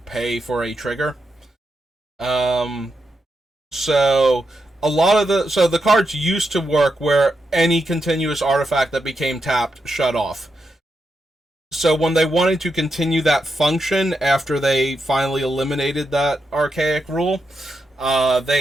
for a trigger. So the cards used to work where any continuous artifact that became tapped shut off. So when they wanted to continue that function after they finally eliminated that archaic rule,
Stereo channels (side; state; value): both; normal; correlation 0.85